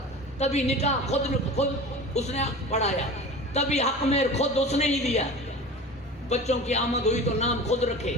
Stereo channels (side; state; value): both; normal; correlation 0.35